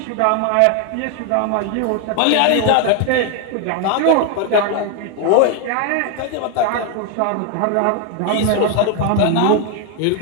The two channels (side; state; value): both; different; correlation 0.01